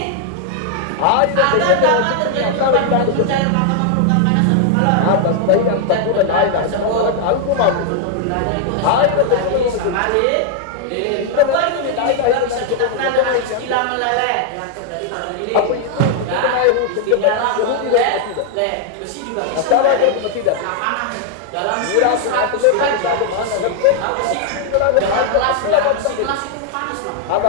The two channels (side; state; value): both; different; correlation 0.00